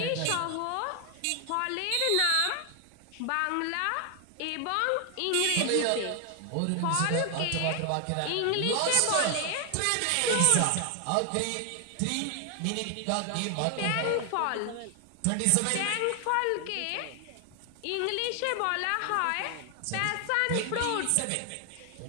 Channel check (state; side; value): different; both; correlation 0.00